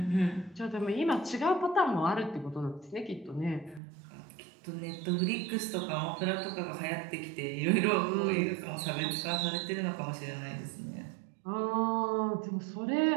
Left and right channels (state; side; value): drops out; left; at 3.8 s